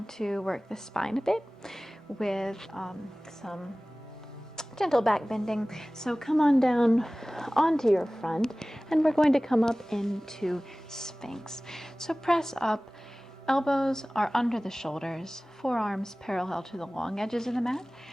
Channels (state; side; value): normal; both; correlation 0.98